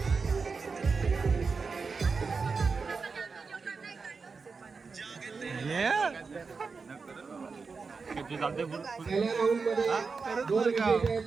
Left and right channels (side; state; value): left; quieter; 4.8 dB